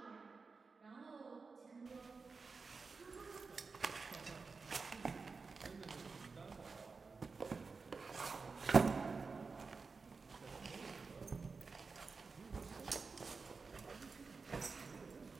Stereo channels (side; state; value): left; quieter; 4.5 dB